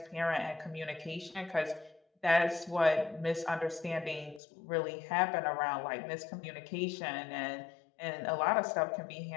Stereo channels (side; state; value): right; drops out; at 4.4 s